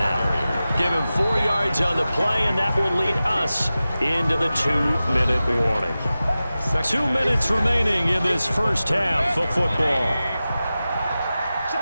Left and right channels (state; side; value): inverted; both; correlation -0.95